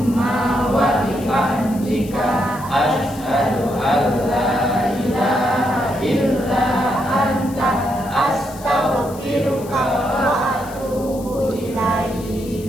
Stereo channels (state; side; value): noise; left; hiss, 19 dB below the sound